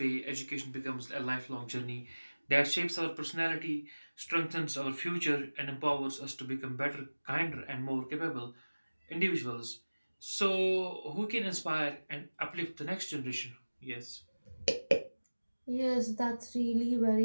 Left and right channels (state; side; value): inverted; both; correlation -1.00